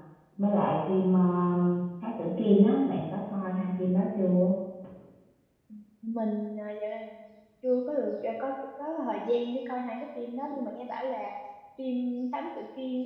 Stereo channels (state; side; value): identical; both; correlation 1.00